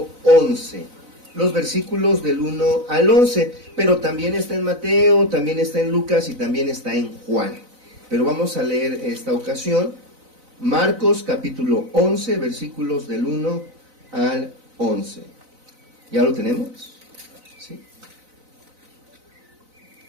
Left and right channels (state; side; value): late; left; 4.0 ms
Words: 11, los versículos del 1 al 11, pero también está en Mateo, también está en Lucas y también está en Juan. Pero vamos a leer esta ocasión, Marcos, capítulo 11, versículos del 1 al 11. ¿Ya lo tenemos? ¿Sí?